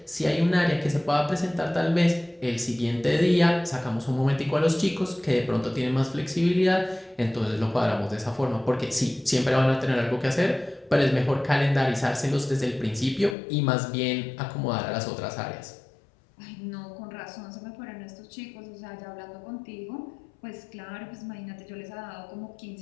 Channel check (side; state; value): right; drops out; at 13.4 s